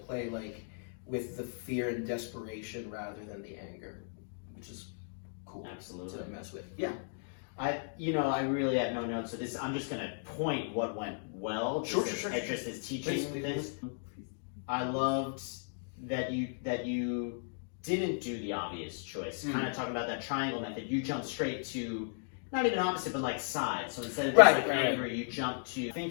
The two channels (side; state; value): right; silent; digital silence